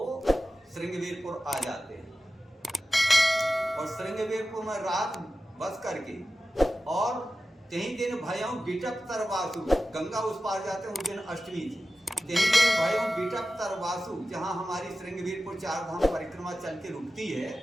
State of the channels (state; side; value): normal; both; correlation 0.94